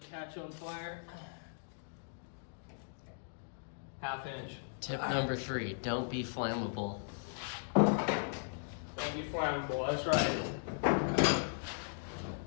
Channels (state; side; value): silent; right; digital silence